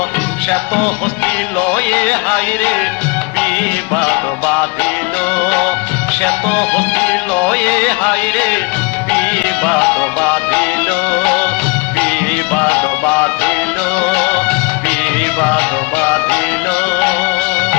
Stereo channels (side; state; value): right; quieter; 30.0 dB